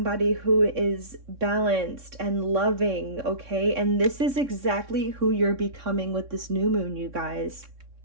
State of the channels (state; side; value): late; left; 3.6 ms